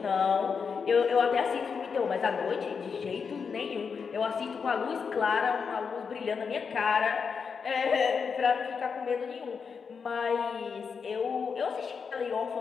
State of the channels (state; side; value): quieter; right; 5.9 dB